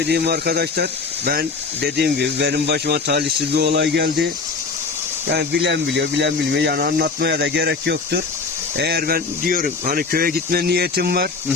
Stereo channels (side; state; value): right; quieter; 4.5 dB